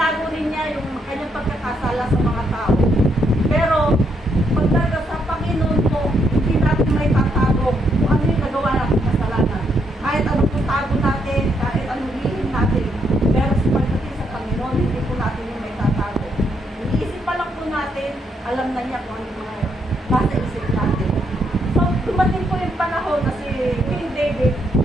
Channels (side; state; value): both; normal; correlation 0.75